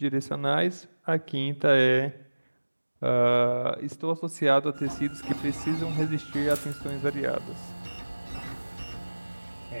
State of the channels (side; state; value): both; inverted; correlation -1.00